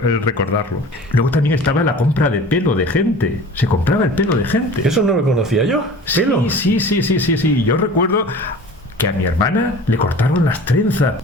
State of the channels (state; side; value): normal; both; correlation 0.41